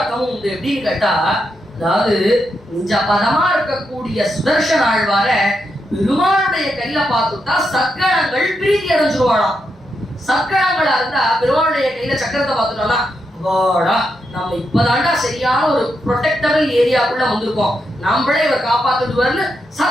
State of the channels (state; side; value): normal; both; correlation 0.83